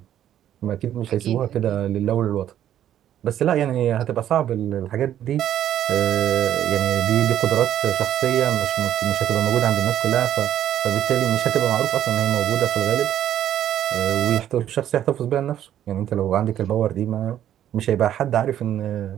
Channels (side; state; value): left; quieter; 11.1 dB